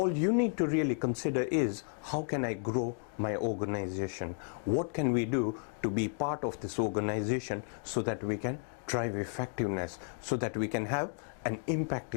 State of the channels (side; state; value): right; silent; 56 dB below the other